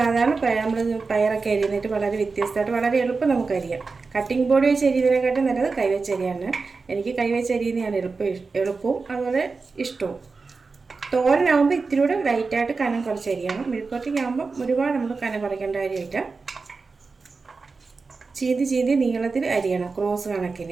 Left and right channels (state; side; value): quieter; left; 4.3 dB